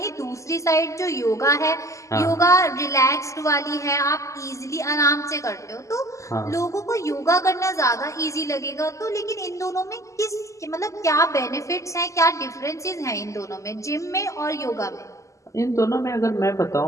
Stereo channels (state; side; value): late; right; 0.15 ms